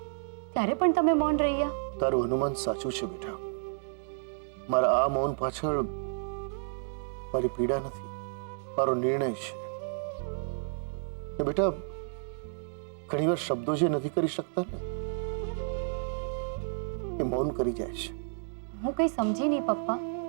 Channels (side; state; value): left; silent; digital silence